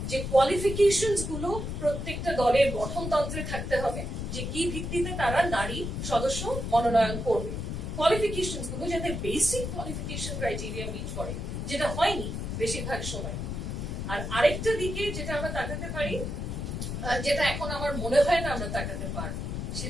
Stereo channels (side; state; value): left; noise; rumble, 4 dB below the sound